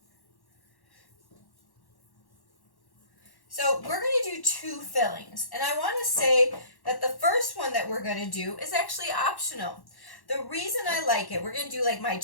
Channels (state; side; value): late; right; 1.1 ms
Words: So we're going to do 2 fillings, and I want to say that the first one that we're going to do is actually optional. The reason I like it, we're going to do like my